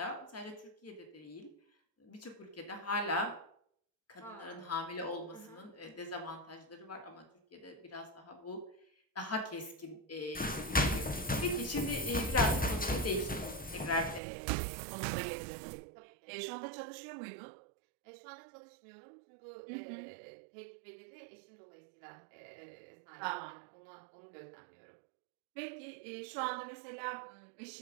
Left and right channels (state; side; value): drops out; left; at 14.2 s